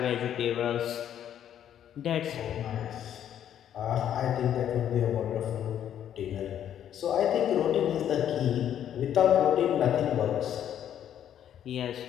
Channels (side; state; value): right; quieter; 10.1 dB